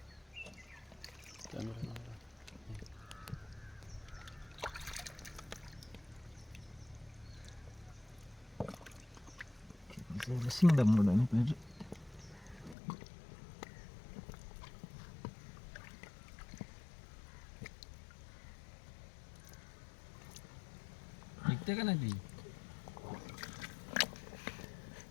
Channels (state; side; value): drops out; right; at 12.8 s